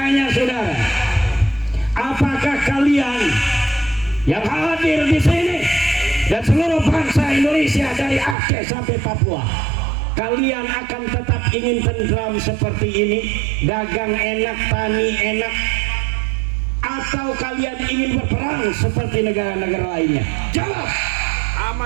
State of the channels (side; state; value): left; drops out; at 8.3 s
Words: saudara, apakah kalian yang hadir di sini dan seluruh bangsa Indonesia dari Aceh sampai Papua, kalian akan tetap ingin tentram seperti ini, dagang enak, tani enak, atau kalian ingin berperang seperti negara-negara lainnya? Jawab.